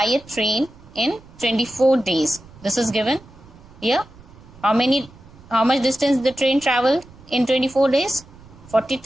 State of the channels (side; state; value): right; noise; rumble, 22 dB below the sound